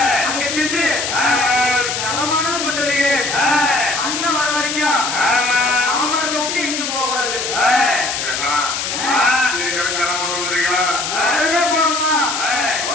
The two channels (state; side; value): noise; left; hiss, 3 dB below the sound